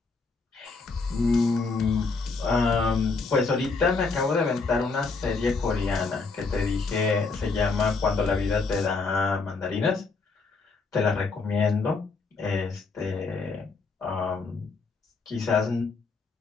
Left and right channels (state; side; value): quieter; right; 4.2 dB